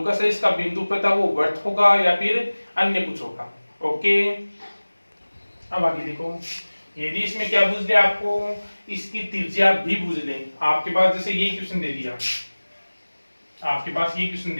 है, इसका बिंदुपथ है वो वर्त होगा या फिर अन्य कुछ होगा। ओके, अब आगे देखो, यदि इसमें क्या पूछ दिया आपको, इसकी त्रिज्या भी पूछ ले। आपके पास जैसे ये क्वेश्चन दे दिया, आपके पास ये क्वेश्चन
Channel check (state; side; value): inverted; both; correlation -1.00